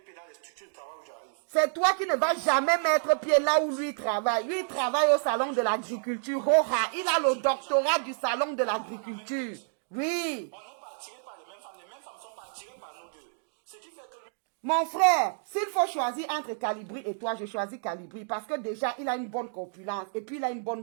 pied dans les structures de travail où j'arrive. C'est toi qui ne vas jamais mettre pied là où lui travaille. Lui, il travaille au salon de l'agriculture. Il a le doctorat du salon de l'agriculture. Oui. On n'est pas attirés par les mêmes femmes ne sont pas attirées par nous deux. Ce qui fait que lui... Mon frère, s'il faut choisir entre Calibri et toi, je choisis Calibri parce que déjà, il a une bonne corpulence et puis il a une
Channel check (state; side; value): silent; left; 58 dB below the other